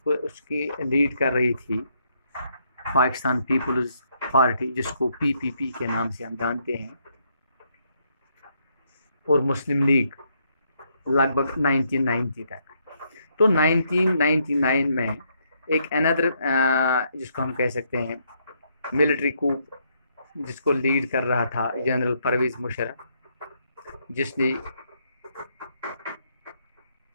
उसकी लीड कर रही थी पाकिस्तान पीपल्स पार्टी, जिसको PPP के नाम से हम जानते हैं, और मुस्लिम लीग लगभग 1990 तक। तो 1999 में एक अनदर जिसको हम कह सकते हैं मिलिट्री कूप, जिसको लीड कर रहा था जनरल परवेज़ मुशर्रफ, जिसने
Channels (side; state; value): both; inverted; correlation -0.74